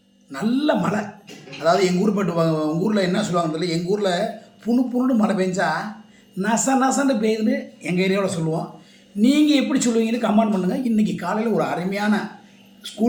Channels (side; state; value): both; identical; correlation 1.00